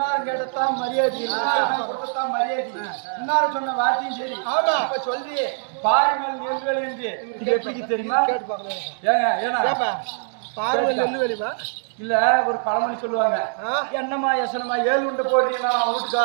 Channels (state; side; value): silent; left; digital silence